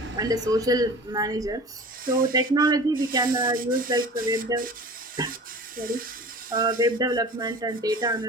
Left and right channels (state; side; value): normal; both; correlation 0.39